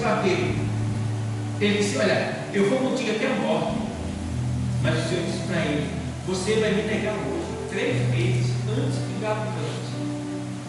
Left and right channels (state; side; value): identical; both; correlation 1.00